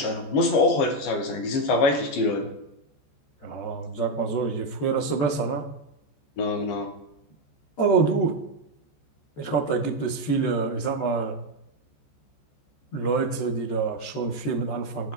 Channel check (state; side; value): late; right; 14 ms